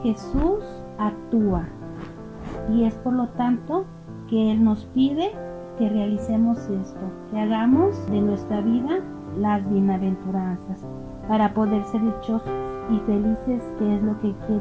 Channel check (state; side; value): identical; both; correlation 1.00